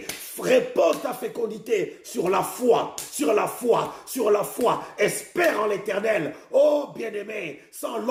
repose ta fécondité sur la foi. Espère en l'Éternel. Oh, bien-aimé, sans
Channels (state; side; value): identical; both; correlation 1.00